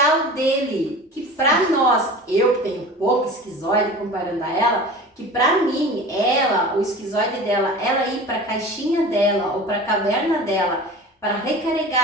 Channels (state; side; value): normal; both; correlation 0.37